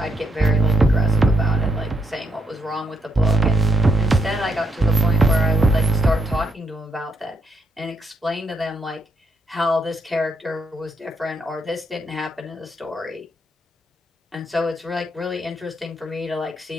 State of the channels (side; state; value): both; normal; correlation 0.77